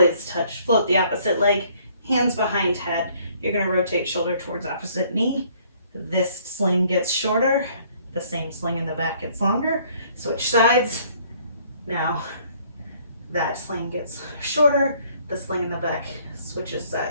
touch, float the opposite leg, hands behind head. You're gonna rotate shoulder towards opposite knee. This sling gets shorter, the same sling in the back gets longer. Switch sides. Now that sling gets shorter, the sling in the back switches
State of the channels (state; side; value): inverted; both; correlation -0.61